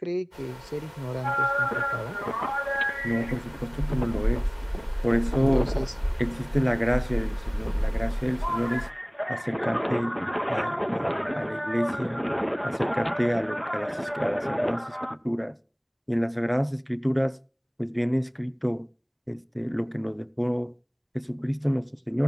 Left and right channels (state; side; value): identical; both; correlation 1.00